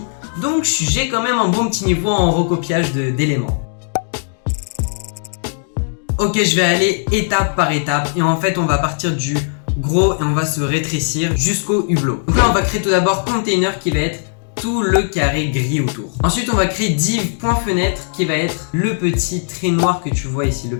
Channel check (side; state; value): right; silent; digital silence